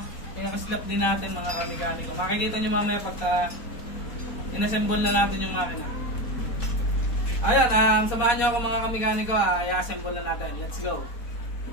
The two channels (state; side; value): late; right; 4.2 ms